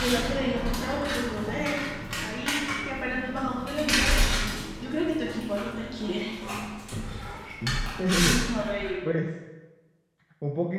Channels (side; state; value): both; identical; correlation 1.00